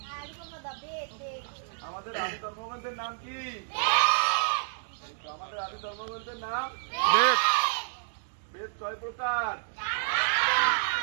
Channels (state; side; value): silent; left; digital silence